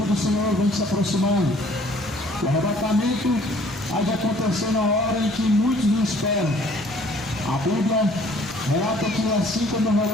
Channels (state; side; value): normal; both; correlation 0.57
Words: do Senhor vem se aproximando. O arrebatamento há de acontecer na hora em que muitos não esperam. A Bíblia relata que assim como